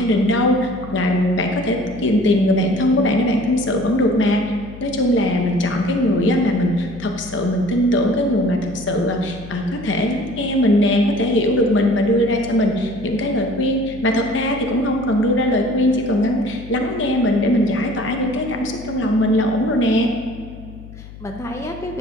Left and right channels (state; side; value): noise; left; hum, 16 dB below the sound